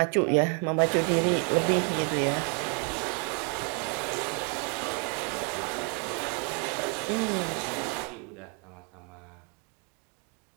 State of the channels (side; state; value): left; quieter; 35.1 dB